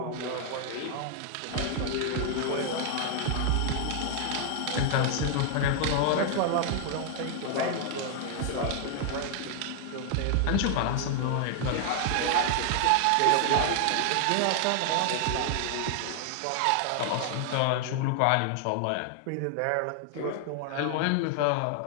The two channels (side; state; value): both; different; correlation 0.00